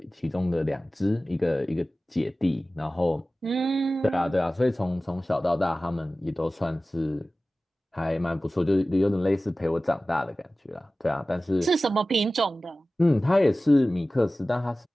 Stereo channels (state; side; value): normal; both; correlation 0.96